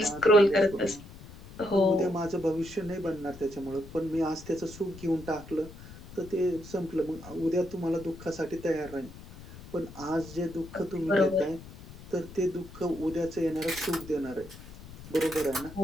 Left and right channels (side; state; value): left; noise; rumble, 16 dB below the sound